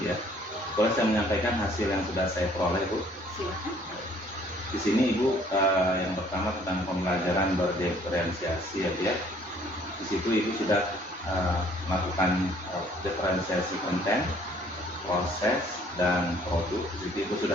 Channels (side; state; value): both; normal; correlation 0.59